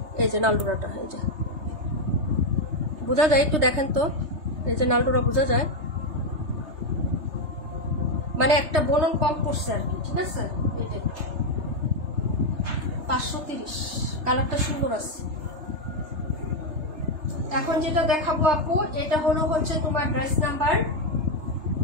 এই যে নালডোরাটা, এই যে বোঝা যায়, একটু দেখেন তো। এই যে নালডোরা বোঝা যায়, মানে একটা বলন কম পড়ছে আর কি, ঠিক আছে। এটা 530, কালারটা সুন্দর আছে। এখন যেটা দেখাবো আপু, এটা হলো হচ্ছে তোমার ড্রেস নাম্বার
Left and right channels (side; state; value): left; late; 3.3 ms